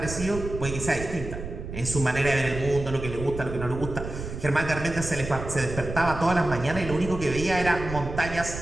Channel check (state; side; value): noise; right; rumble, 8 dB below the sound